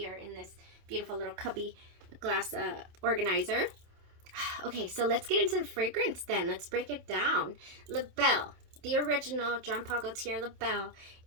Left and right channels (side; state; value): left; late; 27 ms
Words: in this beautiful little cubby glass organizer. Okay, so let's get into the fragrance then. Let's break it down. Le Belle, the original Jean Paul Gaultier Le Belle,